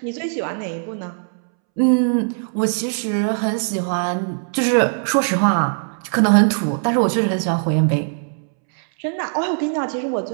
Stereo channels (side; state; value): left; silent; 66 dB below the other